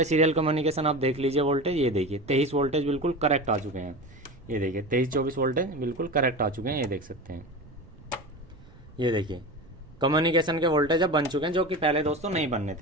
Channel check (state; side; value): noise; right; rumble, 23 dB below the sound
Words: सीरियल कम्युनिकेशन आप देख लीजिए वोल्टेज, ये देखिए 23 वोल्टेज बिल्कुल करेक्ट आ चुके हैं। ये देखिए 23-24 वोल्टेज बिल्कुल करेक्ट आ चुके हैं, ये देख सकते हैं। ये देखिए कम्युनिकेशन के वोल्टेज अब बन चुके हैं, जो कि पहले दोस्तों नहीं बनने